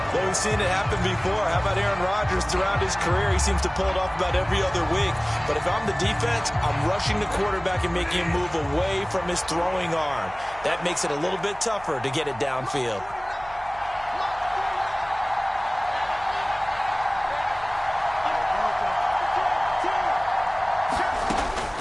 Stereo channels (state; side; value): noise; right; hum, 20 dB below the sound